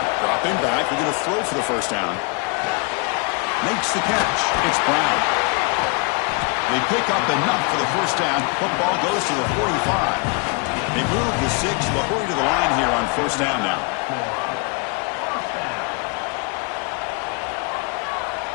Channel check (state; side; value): quieter; right; 33.1 dB